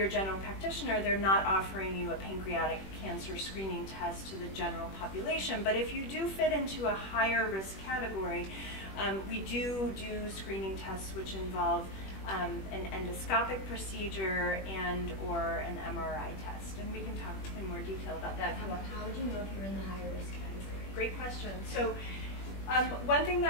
general practitioner, they're not offering you a pancreatic cancer screening test to the general population. But if you do fit into a higher risk category, we do screening tests which involve an endoscopic procedure and or an MRI test. And we can talk in more detail about that if you want. How would you know if you're in the higher risk category? Great question. So one thing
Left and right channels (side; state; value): right; late; 21 ms